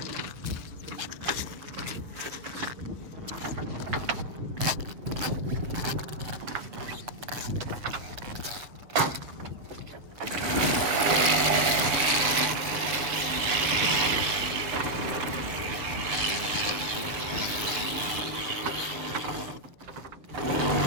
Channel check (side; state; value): left; late; 6.9 ms